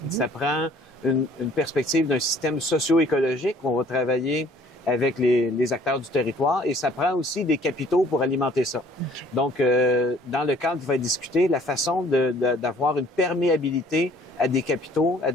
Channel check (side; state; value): both; normal; correlation 0.56